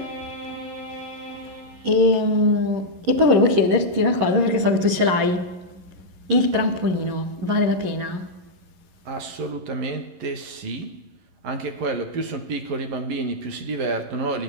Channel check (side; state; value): left; late; 11 ms